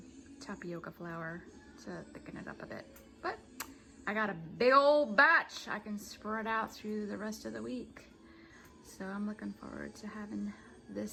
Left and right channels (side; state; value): both; identical; correlation 1.00